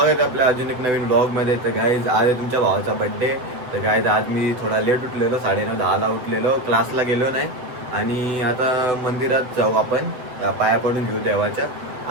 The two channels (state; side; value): late; left; 7.9 ms